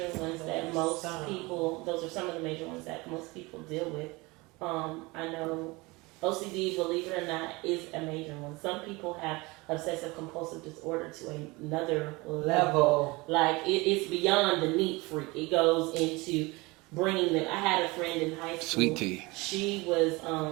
ones that most people. Those are some of the major ones that most people deal with. I know OCD, believe it or not, is a major one. Some people have obsessive compulsive disorder to another level. Like it's beyond the neat freak. It goes into bringing them. I had a friend in high school. Sweet tea. She was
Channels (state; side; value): quieter; left; 23.9 dB